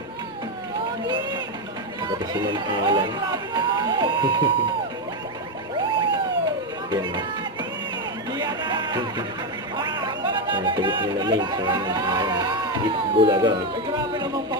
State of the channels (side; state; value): both; normal; correlation 0.08